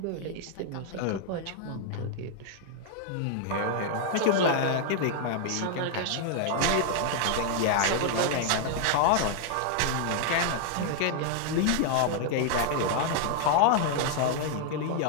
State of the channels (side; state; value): both; different; correlation 0.00